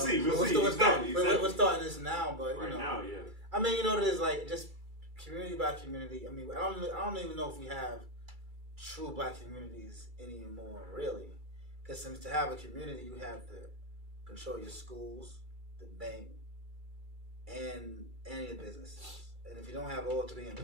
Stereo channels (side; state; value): left; late; 2.3 ms